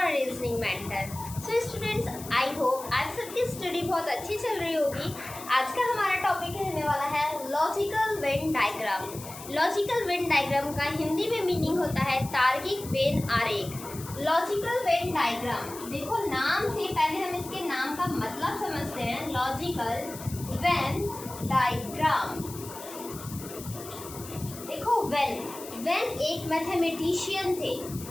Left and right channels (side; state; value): left; noise; hiss, 14 dB below the sound